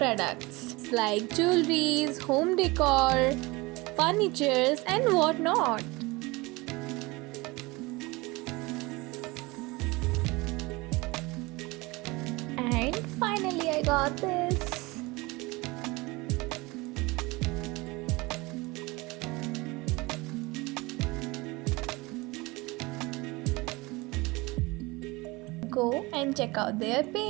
like jewelries, home decor, furnitures and whatnot. And finally I got this. Go and check out their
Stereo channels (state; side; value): quieter; left; 23.4 dB